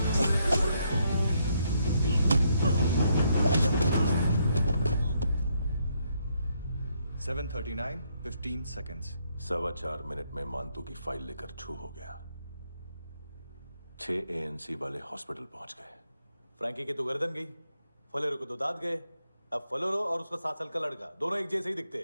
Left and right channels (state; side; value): inverted; both; correlation -0.74